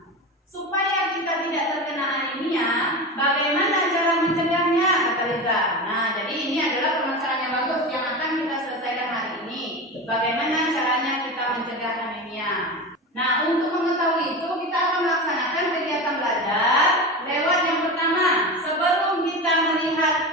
supaya kita tidak terkena anemia, bagaimana cara mencegahnya? Kata Liza. Nah, jadi ini adalah permasalahan yang bagus yang akan kita selesaikan hari ini. Bagaimana caranya kita mencegah anemia? Nah, untuk mengetahui itu kita akan melaksanakan kegiatan belajar lewat yang pertama. Sebelum kita melihat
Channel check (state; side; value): normal; both; correlation 0.25